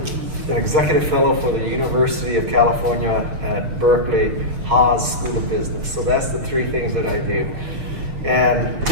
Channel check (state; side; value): late; left; 6.9 ms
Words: executive fellow for the University of California at Berkeley Haas School of Business. So that's the three things that I do. And